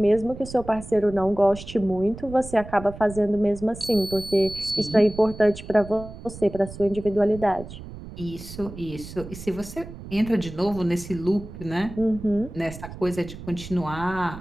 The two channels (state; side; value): noise; right; rumble, 13 dB below the sound